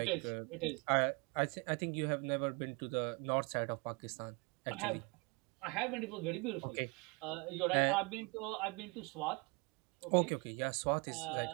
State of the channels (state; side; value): quieter; left; 29.6 dB